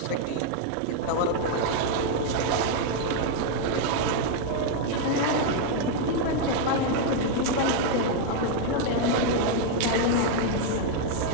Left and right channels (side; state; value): both; different; correlation 0.00